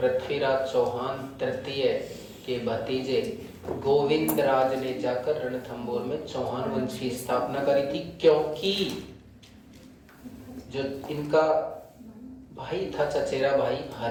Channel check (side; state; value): both; identical; correlation 1.00